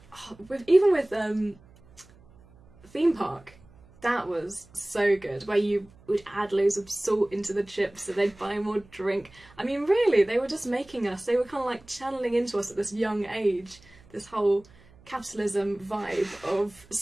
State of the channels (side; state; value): right; noise; hum, 26 dB below the sound